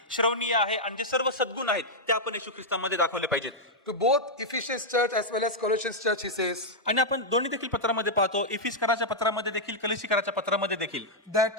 श्रवणीय आहे आणि जे सर्व सद्गुण आहेत ते आपण येशू ख्रिस्तामध्ये दाखवले पाहिजेत. To both Ephesians church as well as Colossians church, he says आणि आपण दोन्ही देखील पत्रामध्ये पाहतो, इफिसकराच्या पत्रामध्ये देखील, कलिसिकराच्या पत्रामध्ये देखील,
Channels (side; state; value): both; normal; correlation -0.05